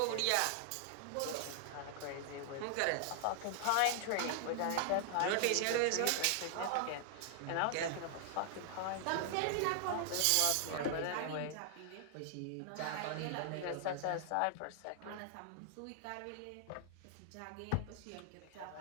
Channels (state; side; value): different; both; correlation -0.01